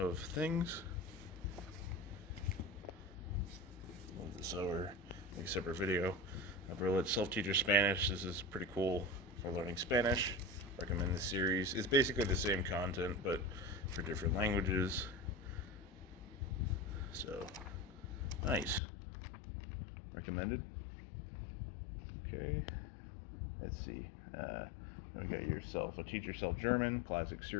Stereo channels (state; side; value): drops out; right; at 18.8 s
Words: of Things. Move this over, make a separate video. Berlitz Self-Teacher Spanish. This is pretty cool for learning Spanish. Recommend the series. It's basically the same content, but for different languages. So, nice. Recommended. Okay. Let's see. We got yourself a Teach Yourself German, classic